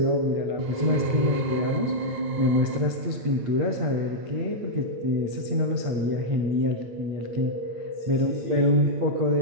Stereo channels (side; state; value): left; late; 8.6 ms